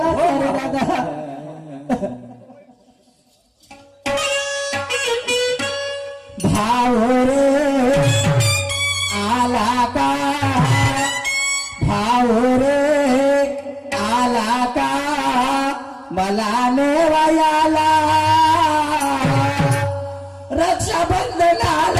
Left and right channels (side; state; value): both; identical; correlation 1.00